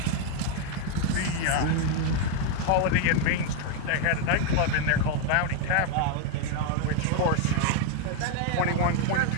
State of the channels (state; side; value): different; both; correlation 0.00